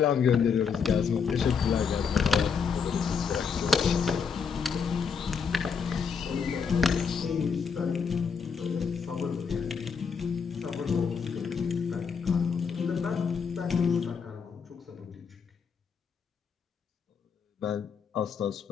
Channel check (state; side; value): quieter; right; 6.1 dB